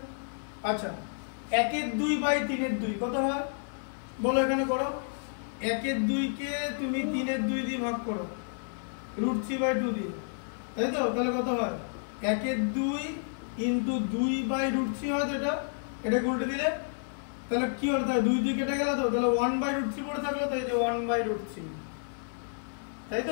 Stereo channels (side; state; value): right; silent; digital silence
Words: আচ্ছা 1 এর 2 বাই 3 এর 2 কত হয় বলো, এখানে করো। 1 এর 2 কে তুমি 3 এর 2 দিয়ে ভাগ করো √3/2 দিয়ে, তাই তো, তাহলে কত হয় 1 এর 2 ইনটু 2 বাই √3 হয় তো, এটা উল্টে দিলে তাহলে কি হলো, তাহলে 2 2 কেটে গেল তো, তাহলে 1/√3 পড়ে থাকলো তো, এই যে 1/√3, তাই